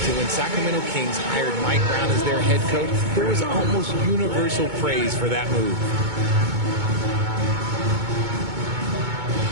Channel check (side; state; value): left; late; 2.2 ms